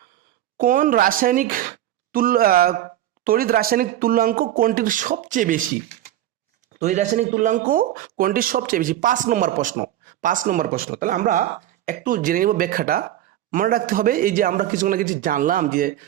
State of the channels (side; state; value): left; quieter; 12.9 dB